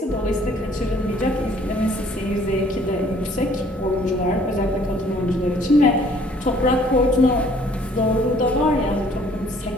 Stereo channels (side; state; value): both; normal; correlation 0.58